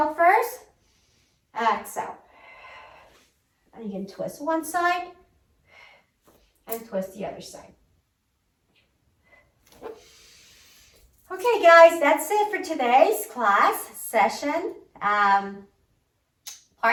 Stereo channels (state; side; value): identical; both; correlation 1.00